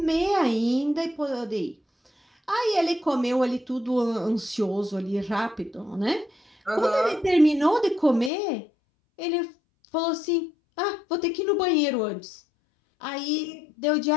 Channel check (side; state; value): right; drops out; at 8.3 s